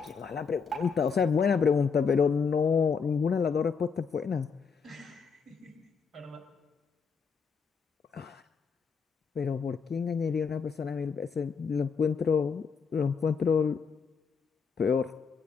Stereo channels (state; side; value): quieter; right; 5.7 dB